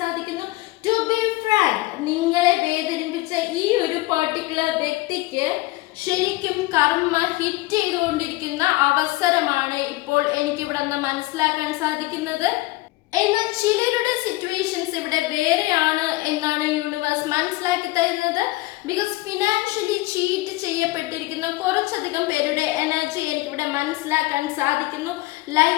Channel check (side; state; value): right; quieter; 20.1 dB